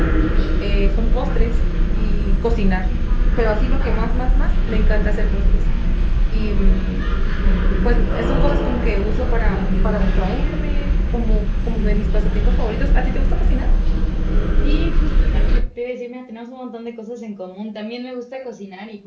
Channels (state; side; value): identical; both; correlation 1.00